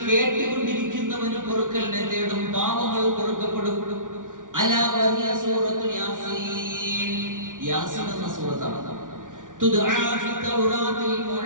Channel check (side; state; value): left; late; 0.88 ms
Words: കേട്ടുകൊണ്ടിരിക്കുന്നവന് പൊറുക്കലിനെ തേടും, പാപങ്ങൾ പൊറുക്കപ്പെടും. അലാ വഹിയ സൂറത്തു യാസീൻ, യാസീൻ എന്ന സൂറത്താണ്. തുദ്ആ ഫി തൗറാത്തിൽ